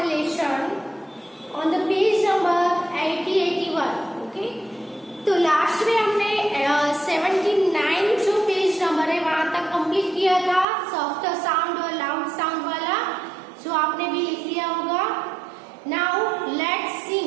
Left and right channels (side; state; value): left; drops out; at 10.7 s